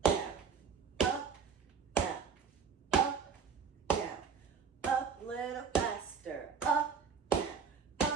down. Up, down. Up, down. Up, little faster. Up, down.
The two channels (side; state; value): left; quieter; 6.2 dB